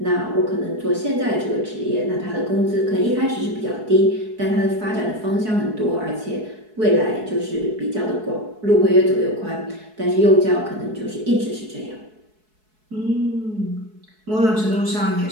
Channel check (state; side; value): late; left; 4.7 ms